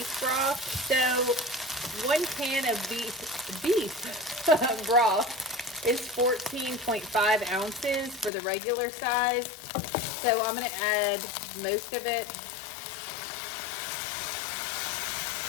broth. So 1 can of beef broth is 14.5 ounces for the regular size. So I'm gonna add most of it.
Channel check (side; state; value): right; drops out; at 8.3 s